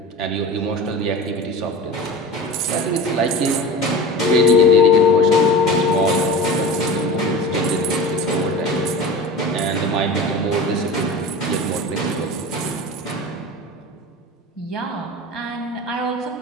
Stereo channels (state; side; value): normal; both; correlation 0.33